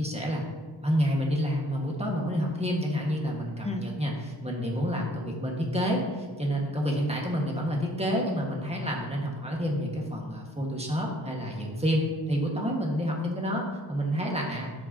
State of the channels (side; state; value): both; normal; correlation 0.63